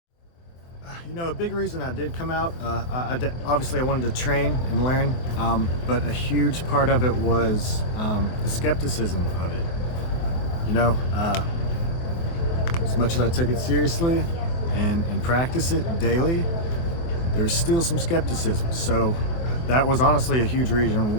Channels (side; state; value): right; late; 23 ms